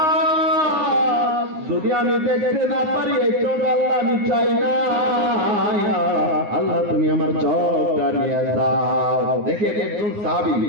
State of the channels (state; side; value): late; left; 9.7 ms